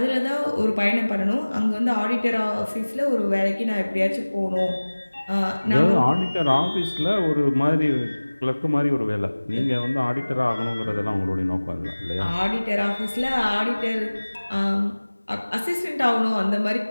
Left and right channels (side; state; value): both; inverted; correlation -1.00